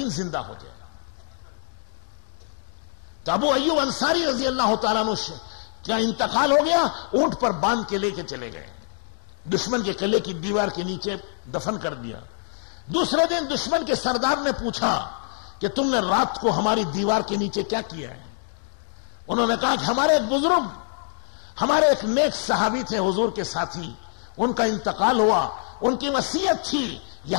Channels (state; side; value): silent; right; 62 dB below the other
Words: زندہ ہو جائے. تو ابو ایوب انصاری رضی اللہ تعالیٰ عنہ کیا انتقال ہو گیا, اونٹ پر باندھ کے لے کے چلے گئے, دشمن کے قلعے کی دیوار کے نیچے دفن کر دیا. دوسرے دن دشمن کے سردار نے پوچھا کہ تم نے رات کو ہماری دیوار کے نیچے کیا کیا ہے؟ انہوں نے کہا کہ ہمارے ایک بزرگ, ہمارے ایک نیک صحابی تھے حضور کے ساتھی, ان کا انتقال ہوا, ان کی وصیت تھی